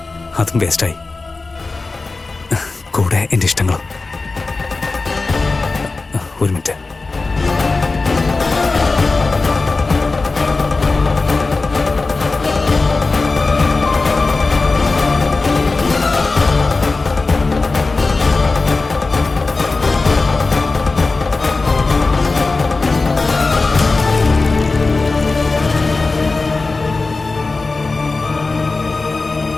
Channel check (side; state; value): right; quieter; 3.7 dB